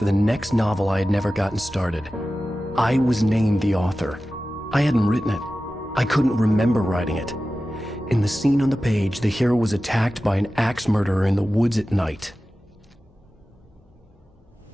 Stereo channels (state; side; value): normal; both; correlation 0.95